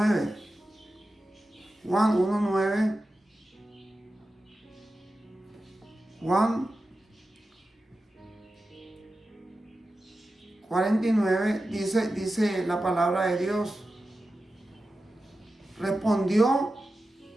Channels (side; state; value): both; normal; correlation 0.92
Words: Juan 1:9, Juan 49, dice la palabra de Dios. Respondió